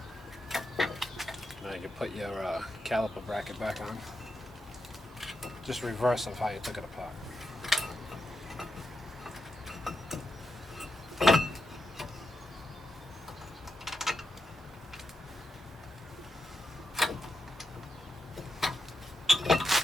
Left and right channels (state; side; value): normal; both; correlation 0.86